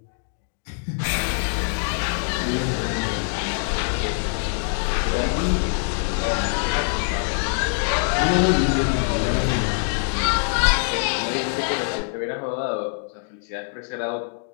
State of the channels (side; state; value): right; silent; digital silence